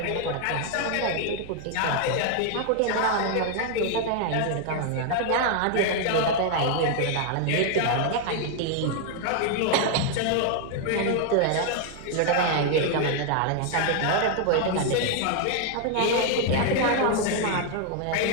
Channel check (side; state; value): both; different; correlation 0.00